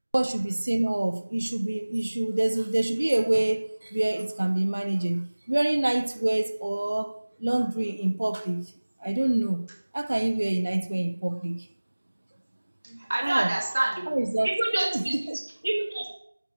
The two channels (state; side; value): inverted; both; correlation -1.00